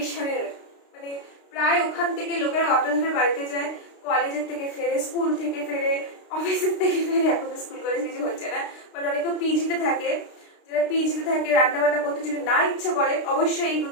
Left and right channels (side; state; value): right; late; 32 ms